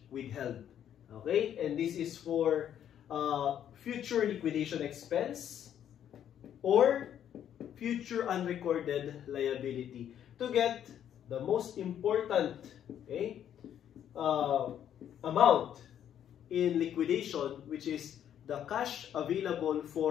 withheld. Okay? And this is for future liquidation expense or future unrecorded liability, to get the most important, okay, amount in liquidation, which is the cash available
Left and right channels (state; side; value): quieter; right; 9.9 dB